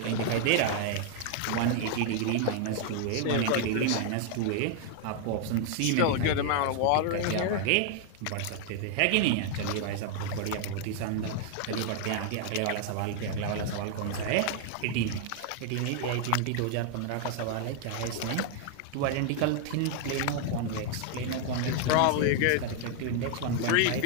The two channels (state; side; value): different; both; correlation 0.00